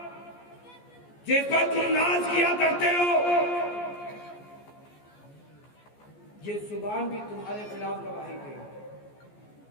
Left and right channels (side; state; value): right; late; 14 ms